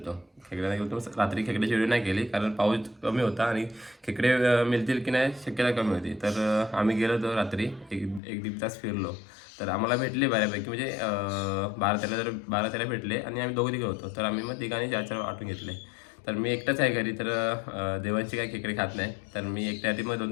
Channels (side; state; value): right; drops out; at 8.2 s